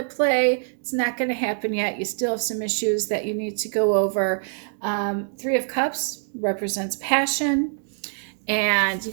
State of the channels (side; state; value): left; silent; digital silence